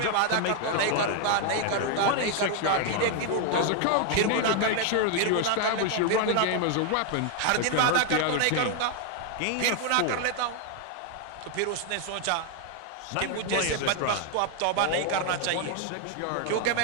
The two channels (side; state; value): both; different; correlation 0.01